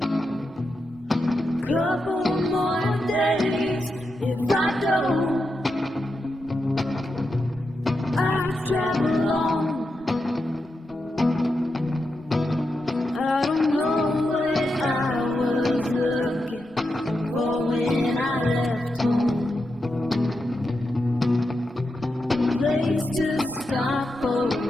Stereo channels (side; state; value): both; normal; correlation 0.87